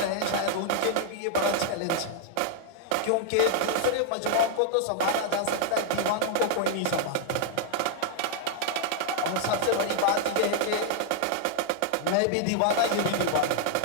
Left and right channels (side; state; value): both; different; correlation -0.01